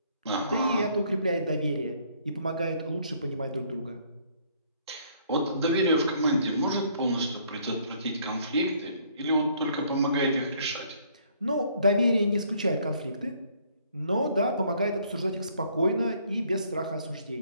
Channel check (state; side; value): inverted; both; correlation -0.63